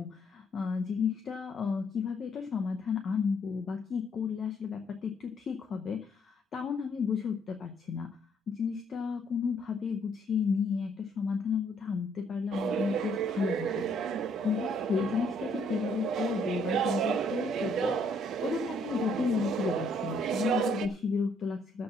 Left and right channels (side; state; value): both; normal; correlation 0.68